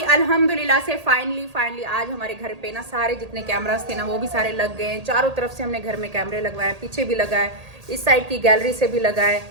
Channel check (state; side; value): late; left; 1.8 ms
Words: अल्हम्दुलिल्लाह से फाइनली आज हमारे घर पे ना सारे जितने कैमरास थे ना वो भी सारे लग गए हैं। चारों तरफ से हमने घर में कैमरे लगवाए, पीछे भी लगाए, इस साइड की गैलरी से भी लगाए,